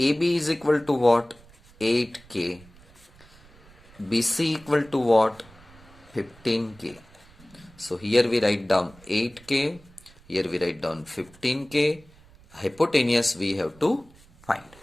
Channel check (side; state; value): right; noise; rumble, 25 dB below the sound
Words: AB is equal to what? 8K. BC equal to what? 15K. So here we write down 8K, here we write down 15K. Hypotenuse we have to find.